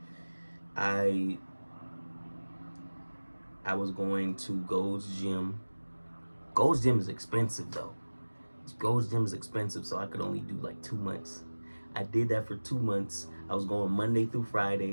I was going to Gold's Gym. Gold's Gym is expensive though. Gold's Gym is expensive, so I could only do like 2 months. I did that for 2 months. I was going Monday through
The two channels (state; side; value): inverted; both; correlation -1.00